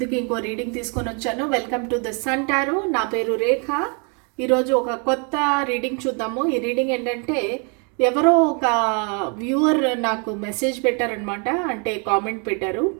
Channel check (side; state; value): left; quieter; 36.1 dB